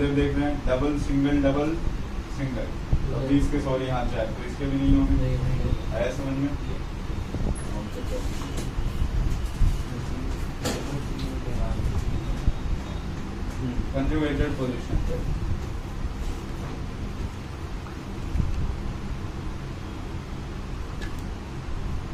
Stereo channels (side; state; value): both; identical; correlation 1.00